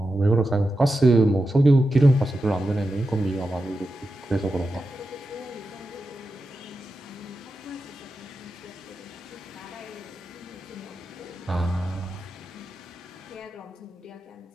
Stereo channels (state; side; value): normal; both; correlation 0.90